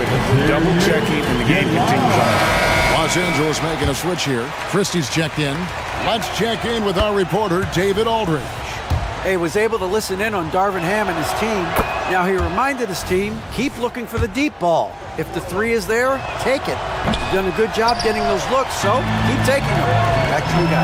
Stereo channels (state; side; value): identical; both; correlation 1.00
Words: it. Double checking, and the game continues on. Los Angeles making a switch here. Christie's checked in. Let's check in with our reporter, David Aldridge. He was able to listen in on Darvin Ham and his team. Now he reminded his team, keep looking for the deep ball. If the three is there, take it. You've done a good job getting those looks, so keep taking them. Back to you